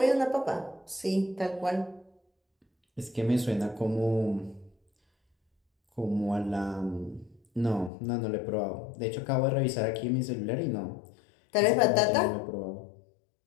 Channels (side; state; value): right; drops out; at 7.9 s